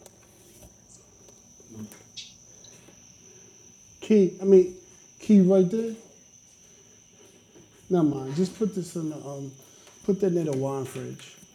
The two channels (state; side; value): identical; both; correlation 1.00